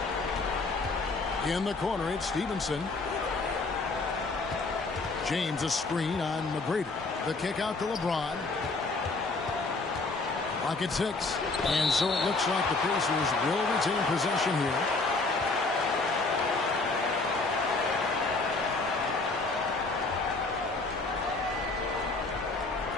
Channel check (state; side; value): quieter; right; 3.6 dB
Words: In the corner, it's Stevenson. James a screen on McGrady. The kick out to LeBron. Clock at 6. And so it looks like the Pacers will retain possession here.